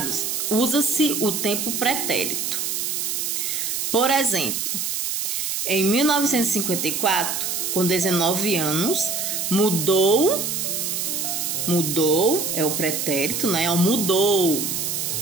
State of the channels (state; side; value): noise; right; hiss, 1 dB below the sound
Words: usa-se o tempo pretérito. Por exemplo, em 1954, com 19 anos, mudou é o pretérito, né? Mudou,